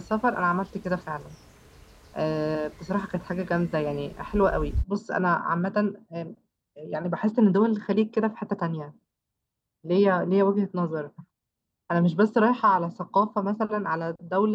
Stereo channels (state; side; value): identical; both; correlation 1.00